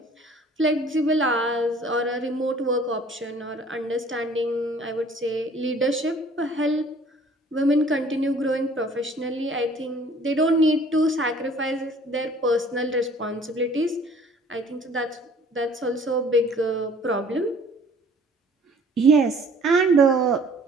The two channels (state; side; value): normal; both; correlation 0.53